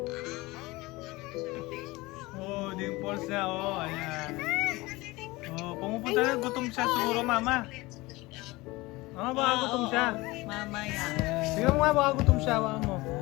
Oh, dimples na. Oh, ayan. Oh, pumupunta na. Gutom siya siguro, mama. Ah, baka gutom siya. Mamaya. Tingnan mo nga, baka gutom siya. Baka mo.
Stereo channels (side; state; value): right; quieter; 21.5 dB